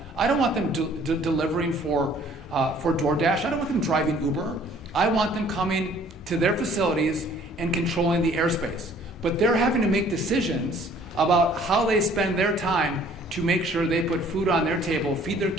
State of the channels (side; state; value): both; normal; correlation 0.56